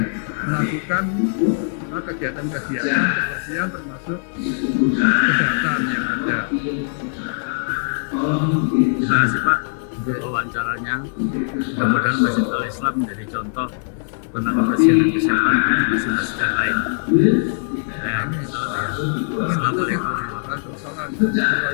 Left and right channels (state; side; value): silent; right; digital silence